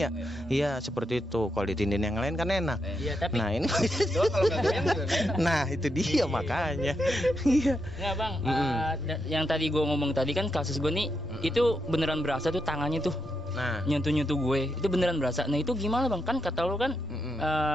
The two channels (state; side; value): normal; both; correlation 0.83